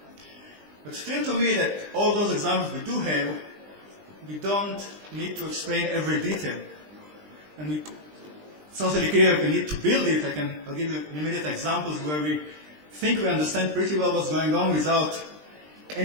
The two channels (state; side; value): late; left; 20 ms